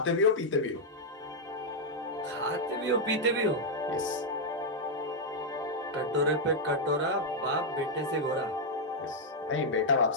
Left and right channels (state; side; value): normal; both; correlation -0.03